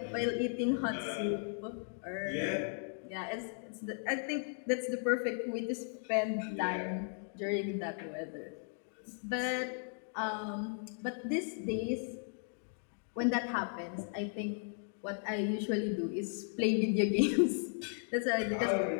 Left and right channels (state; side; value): silent; right; 54 dB below the other